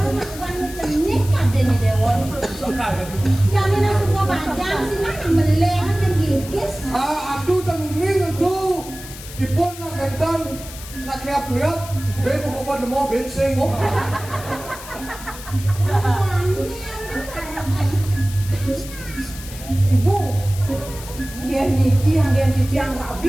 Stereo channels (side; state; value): left; noise; hiss, 14 dB below the sound